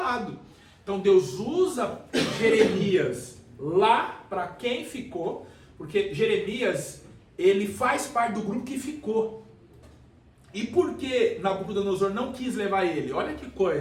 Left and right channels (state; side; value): identical; both; correlation 1.00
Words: Então, Deus usa Jeremias lá para quem ficou, porque Jeremias, ele faz parte do grupo que ficou. E por que Nabucodonosor não quis levar ele? Olha que